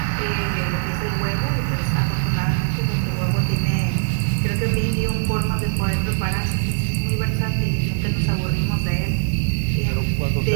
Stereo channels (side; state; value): left; silent; 65 dB below the other